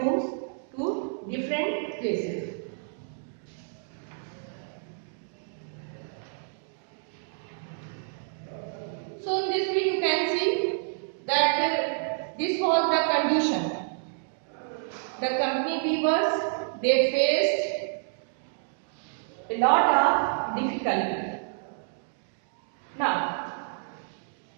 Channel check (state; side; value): silent; left; digital silence